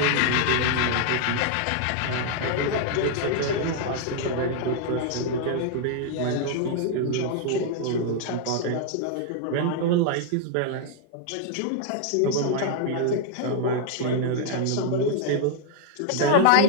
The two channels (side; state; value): both; different; correlation 0.00